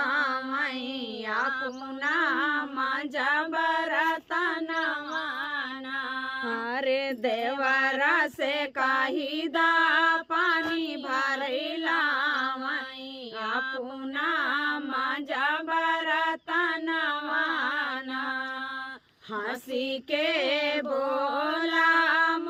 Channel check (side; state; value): both; identical; correlation 1.00